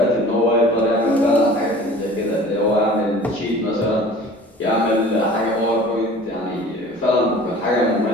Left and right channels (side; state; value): both; normal; correlation 0.44